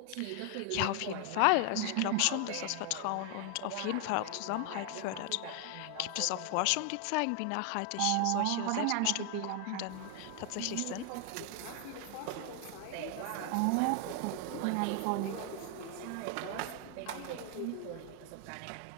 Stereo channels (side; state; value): both; different; correlation 0.00